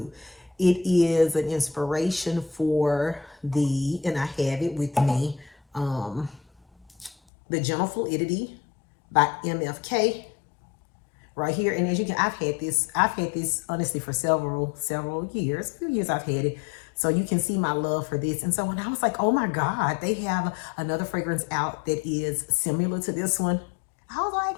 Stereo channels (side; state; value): right; drops out; at 7.2 s